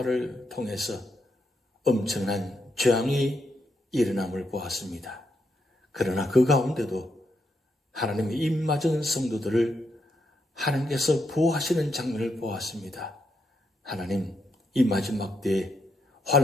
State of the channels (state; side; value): normal; both; correlation 0.80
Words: 통해서 엄청난 재앙이 일어남을 보았습니다. 그러나 그 가운데도 하나님의 입맞은 성도들을 하나님께서 보호하시는 장면을 보았습니다. 하나님, 이 마지막 때에,